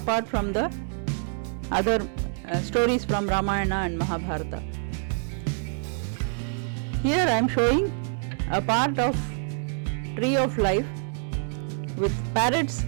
from the other stories from Ramayana and Mahabharata. Here I am showing a part of tree of life with parrots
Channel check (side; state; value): left; silent; digital silence